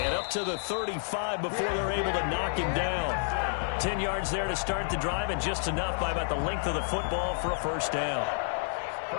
up to the 35 before they're able to knock him down. 10 yards there to start the drive, and just enough by about the length of the football for a first down.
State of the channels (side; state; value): right; silent; digital silence